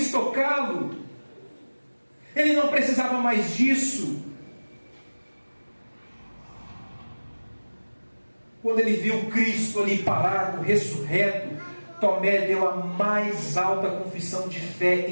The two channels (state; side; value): inverted; both; correlation -1.00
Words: tocá-lo. Ele não precisava mais disso. Quando ele viu Cristo ali parado, ressurreto, Tomé deu a mais alta confissão de fé